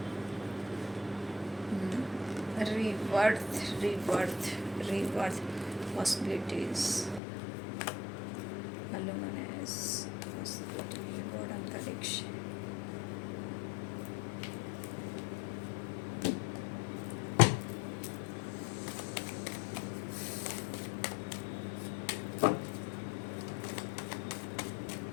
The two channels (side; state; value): right; drops out; at 7.2 s